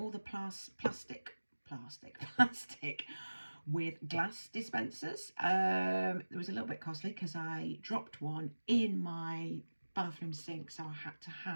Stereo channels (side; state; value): both; inverted; correlation -1.00